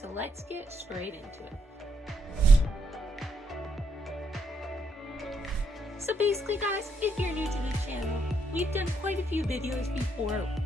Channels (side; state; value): both; normal; correlation 0.75